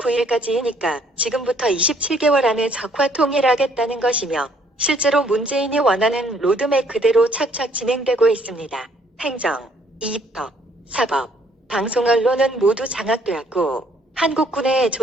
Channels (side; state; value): both; normal; correlation 0.64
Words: 지금부터 27개월 안에 적화 통일하겠다는 것이며 실제로 문재인이 원하는 로드맵 그대로 착착 진행되고 있습니다. 행정, 입법, 사법, 방송 언론은 모두 장악되었고 한국군의